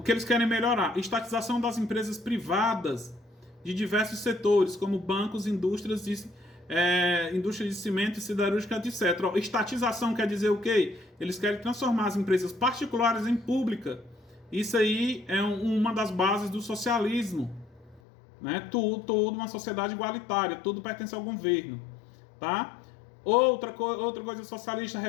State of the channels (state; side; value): drops out; right; at 18.0 s